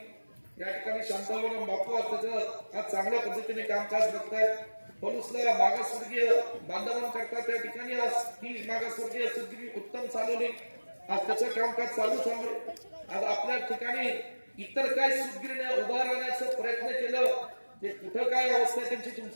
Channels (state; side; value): inverted; both; correlation -1.00